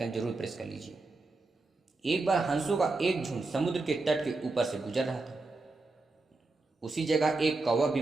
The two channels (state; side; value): quieter; left; 3.4 dB